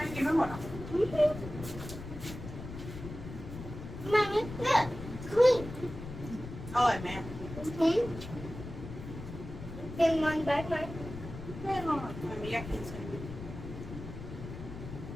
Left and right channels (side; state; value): left; noise; rumble, 10 dB below the sound